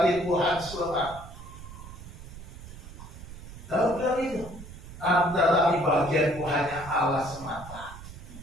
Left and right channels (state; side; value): noise; right; rumble, 14 dB below the sound